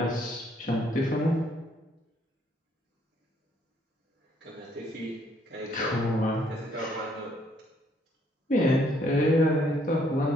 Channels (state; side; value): normal; both; correlation 0.67